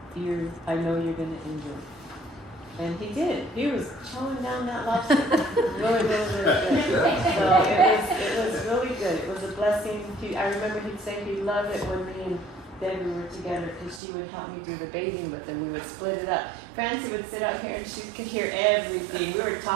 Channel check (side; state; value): left; drops out; at 14.0 s